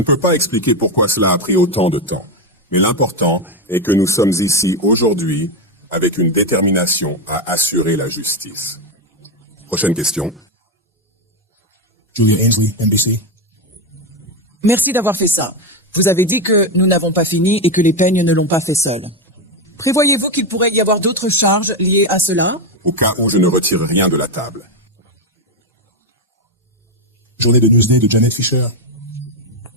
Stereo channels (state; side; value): normal; both; correlation 0.09